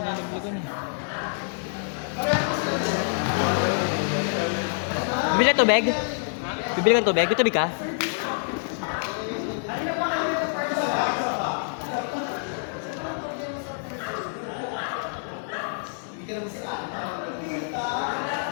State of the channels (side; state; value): right; silent; 61 dB below the other